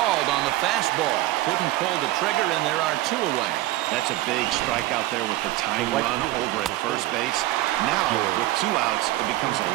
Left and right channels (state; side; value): quieter; left; 16.9 dB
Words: on the fastball. Couldn't pull the trigger, and there are 2 away. That's a big strikeout there with the tying run over at first base. Now, with 2 outs, it becomes a